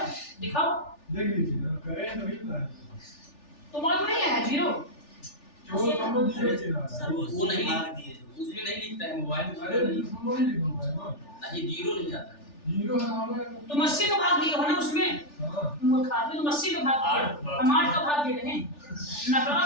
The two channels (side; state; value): right; late; 3.4 ms